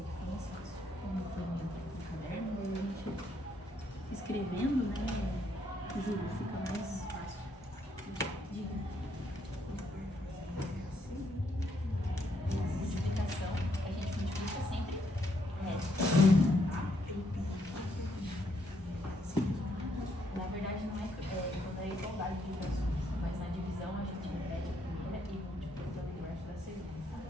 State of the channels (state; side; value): normal; both; correlation 0.74